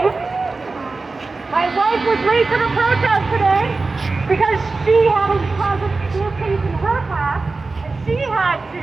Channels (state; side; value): quieter; left; 3.8 dB